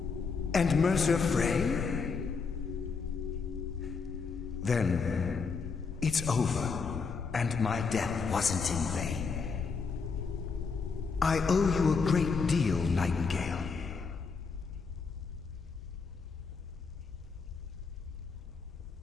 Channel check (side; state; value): right; quieter; 5.0 dB